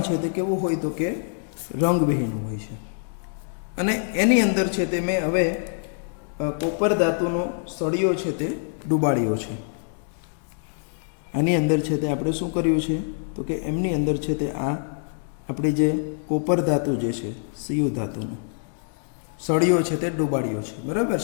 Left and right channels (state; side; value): silent; right; digital silence